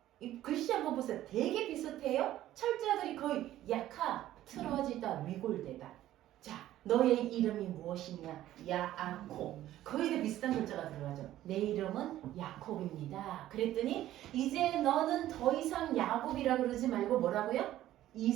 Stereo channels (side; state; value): left; quieter; 13.6 dB